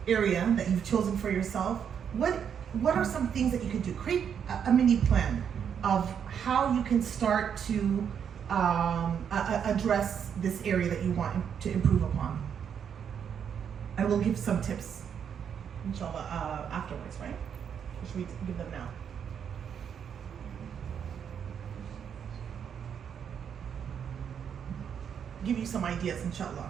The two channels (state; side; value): quieter; left; 7.9 dB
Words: area that you've chosen for yourself, what are some things that you could do? Create a mini plan of how you can start to address this area that you want to improve upon. And we'll give some tips, inshallah, afterwards, right? Or should we give them now? Give you some ideas,